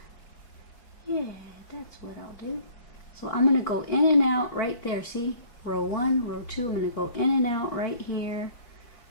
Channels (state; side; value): late; right; 4.5 ms